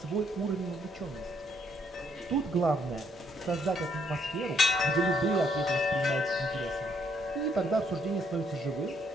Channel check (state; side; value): normal; both; correlation 0.71